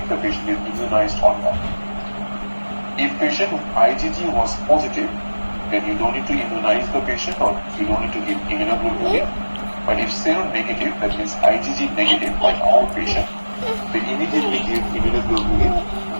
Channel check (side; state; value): both; inverted; correlation -1.00